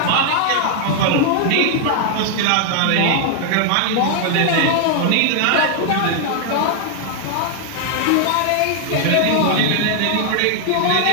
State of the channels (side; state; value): both; different; correlation 0.00